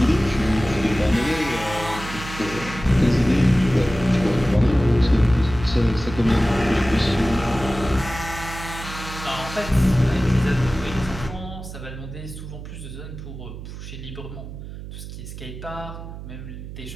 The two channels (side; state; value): right; noise; hum, 11 dB below the sound